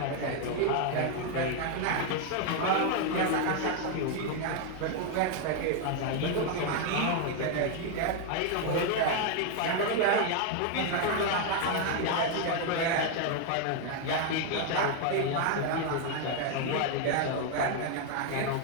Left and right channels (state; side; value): different; both; correlation 0.01